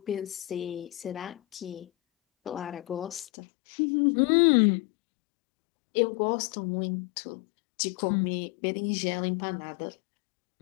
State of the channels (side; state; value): right; drops out; at 3.2 s